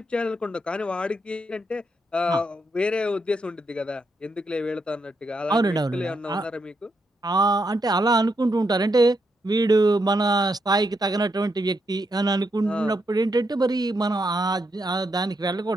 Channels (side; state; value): both; normal; correlation 0.80